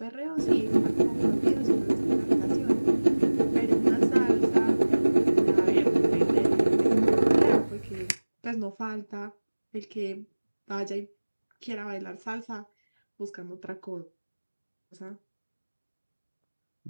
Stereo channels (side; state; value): both; inverted; correlation -1.00